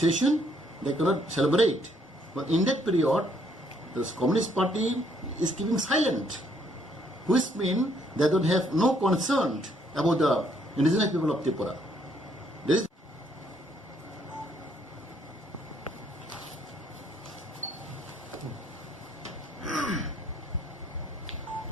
they cannot celebrate. But in that period, the Communist Party is keeping silent, which means they don't have no concern about the indigenous people of Tripura. There is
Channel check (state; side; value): normal; both; correlation 0.68